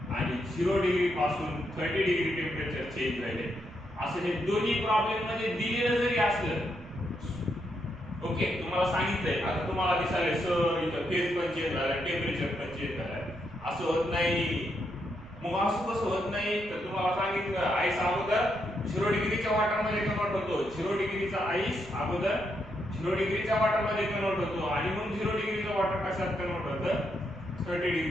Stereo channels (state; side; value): noise; right; rumble, 19 dB below the sound